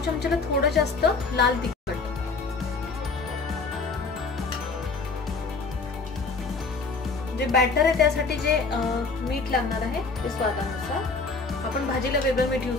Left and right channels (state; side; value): quieter; right; 4.1 dB